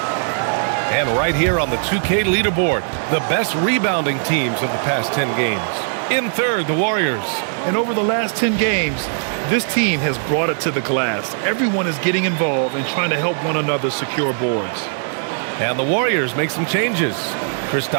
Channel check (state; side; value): silent; left; digital silence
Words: And right here on the 2K leaderboard, the best rebounding teams of the past 10 games. In third, the Warriors. And over the last 10 games, this team has brought it to the glass. Everyone is getting involved and trying to help one another secure boards. And the Warriors make some changes.